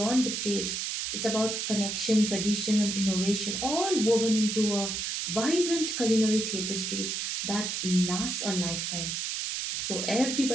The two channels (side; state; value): right; noise; hiss, 2 dB below the sound